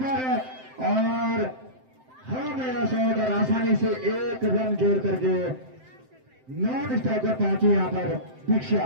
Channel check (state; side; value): late; left; 7.7 ms